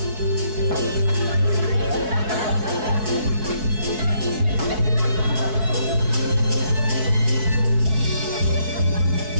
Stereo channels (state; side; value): late; left; 4.6 ms